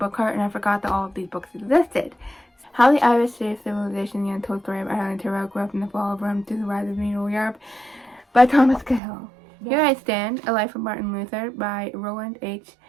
cart, and I forgot that all of these books existed. How the Irish Saved Civilization, the Untold Story of Ireland Tyrrell grew up in the fall of Rome through the rise of medieval Europe by Thomas Cahill. Here I Stand, A Life of Martin Luther by Roland H.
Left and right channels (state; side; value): drops out; left; at 9.0 s